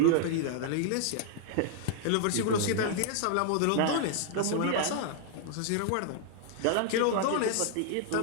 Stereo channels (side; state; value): both; different; correlation 0.00